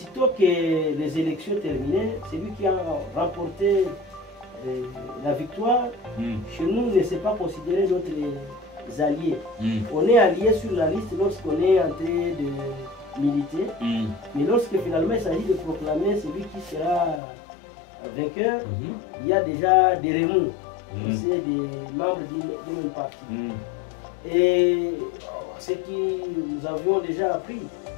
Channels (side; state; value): right; drops out; at 17.2 s